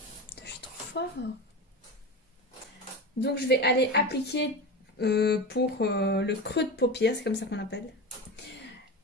Je suis trop fort. Donc, je vais aller appliquer pour le creux de paupière, c'est comme ça qu'on appelle.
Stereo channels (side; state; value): both; normal; correlation 0.25